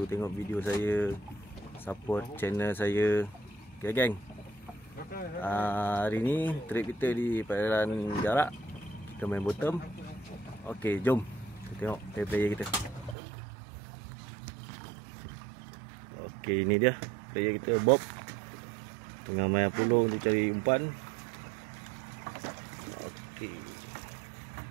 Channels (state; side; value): drops out; left; at 13.2 s